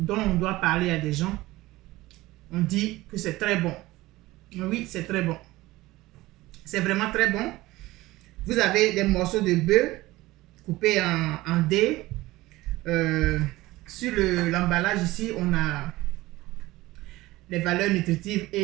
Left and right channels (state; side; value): quieter; left; 18.5 dB